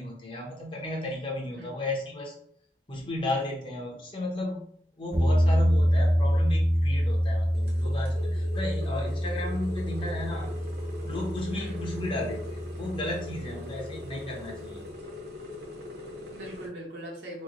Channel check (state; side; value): normal; both; correlation 0.88